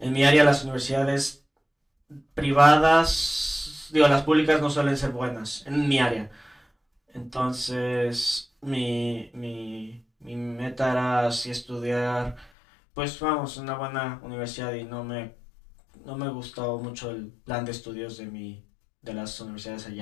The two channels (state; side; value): drops out; right; at 12.5 s